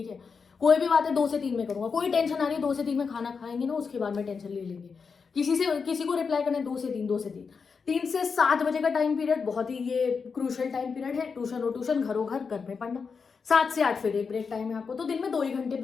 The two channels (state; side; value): quieter; right; 5.4 dB